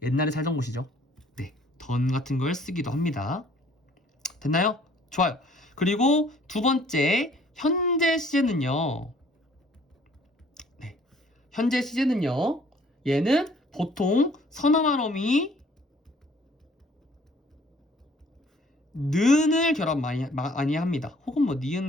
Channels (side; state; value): both; normal; correlation 0.57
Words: 옛날에 살던 곳이죠. 네, 던 같은 걸 쓰기도 합니다. 됐나요? 좋아요. 그리고 두 번째, 현재 시제는요. 네, 현재 시제는요. 얘는 보통 선어말 어미 는을 결합 많이 합니다. 혹은 뭐 니은